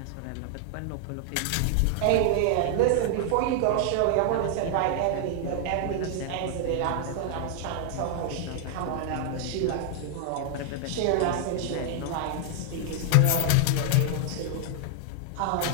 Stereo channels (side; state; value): both; different; correlation 0.00